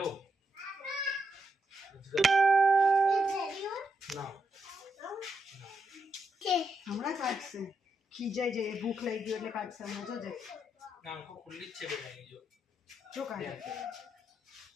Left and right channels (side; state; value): both; normal; correlation 0.82